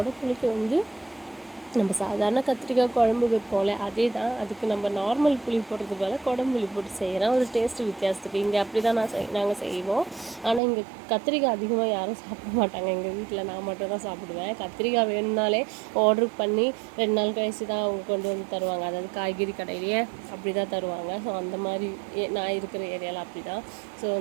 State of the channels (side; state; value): left; drops out; at 10.6 s